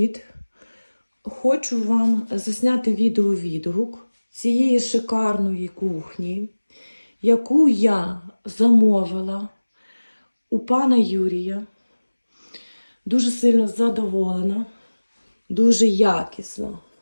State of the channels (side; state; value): both; inverted; correlation -1.00